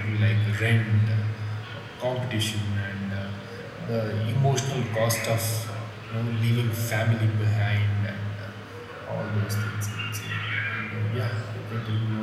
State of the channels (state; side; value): identical; both; correlation 1.00